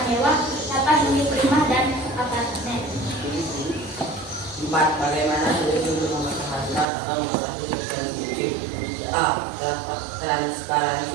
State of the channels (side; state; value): left; drops out; at 6.9 s